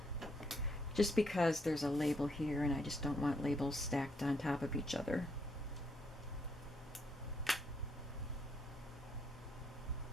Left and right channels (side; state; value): both; normal; correlation 0.73